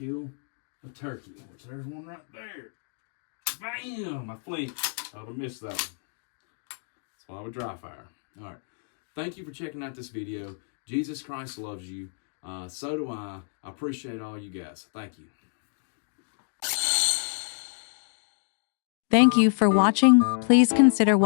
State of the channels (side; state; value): right; silent; digital silence